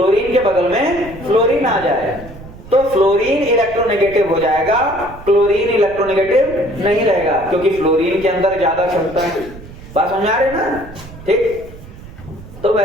के बगल में फ्लोरीन आ जाए तो फ्लोरीन इलेक्ट्रोनेगेटिव हो जाएगा, क्लोरीन इलेक्ट्रोनेगेटिव नहीं रहेगा क्योंकि फ्लोरीन के अंदर ज्यादा क्षमता है। बात समझ आ रही है ना? ठीक। तो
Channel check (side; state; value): right; noise; rumble, 16 dB below the sound